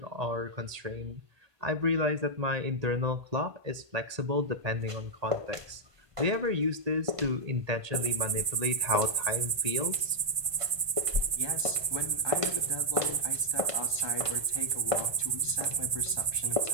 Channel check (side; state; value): left; late; 1.2 ms